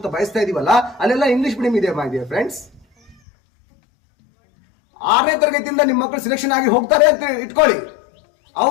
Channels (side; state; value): right; drops out; at 3.2 s